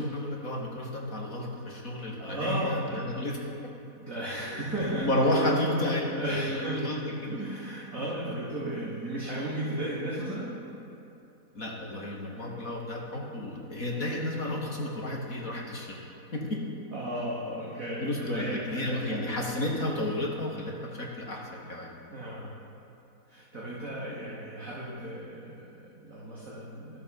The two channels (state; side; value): late; right; 4.1 ms